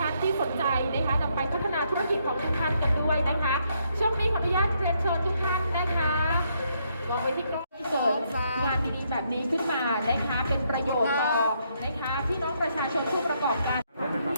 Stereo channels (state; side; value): inverted; both; correlation -0.74